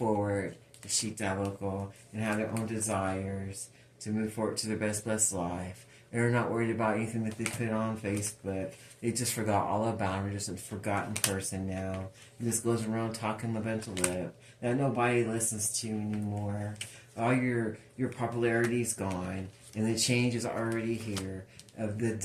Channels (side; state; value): both; identical; correlation 1.00